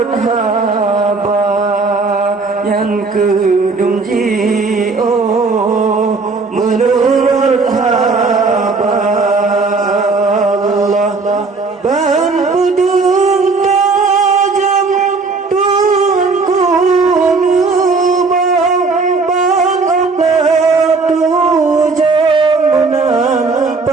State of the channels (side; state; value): left; quieter; 4.1 dB